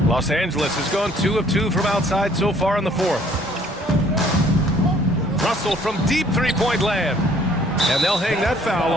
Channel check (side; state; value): both; normal; correlation 0.59